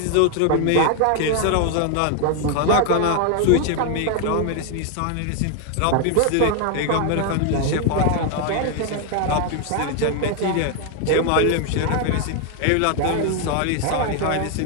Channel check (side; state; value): both; different; correlation 0.00